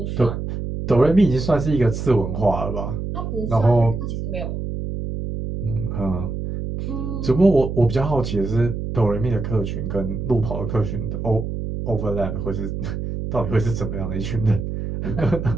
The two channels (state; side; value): noise; right; hum, 5 dB below the sound